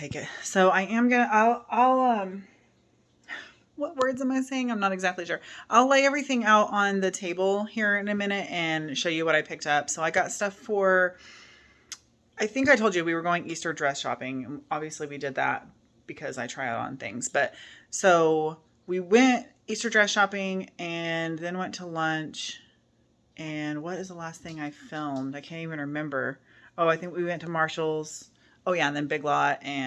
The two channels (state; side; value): identical; both; correlation 1.00